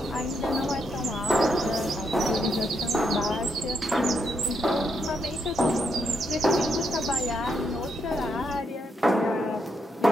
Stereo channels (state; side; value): normal; both; correlation 0.79